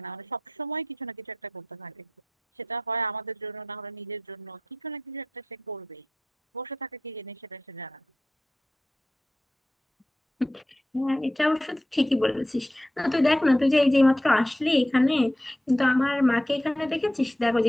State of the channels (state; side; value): normal; both; correlation 0.89